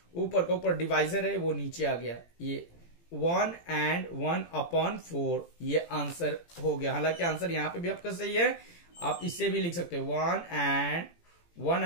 ऊपर का ऊपर डिवाइजर है वो नीचे आ गया। ये 1 and 1/4 ये आंसर हो गया। हालांकि आंसर यहां पे भी आपका सही है, आप इससे भी लिख सकते हो 1 and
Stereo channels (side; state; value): right; late; 18 ms